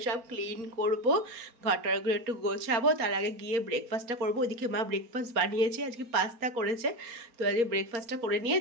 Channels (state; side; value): late; left; 4.3 ms